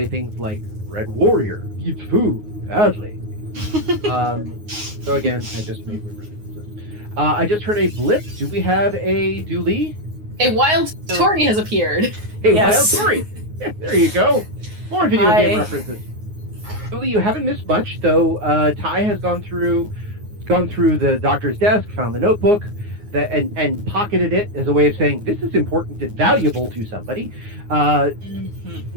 things like, "Red Warrior eats food badly." So again, I just made references. I just heard a blip. Do we have a Dooley? A wild Tori has appeared. Hey, Yes. Wild Story. There you go. More video Hi. game references. Dooley, you haven't missed much, though. Ty has gone through the doctor's desk, found the notebook, and pocketed it as a way of saying this is important and valuable to somebody.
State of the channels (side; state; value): left; late; 9.5 ms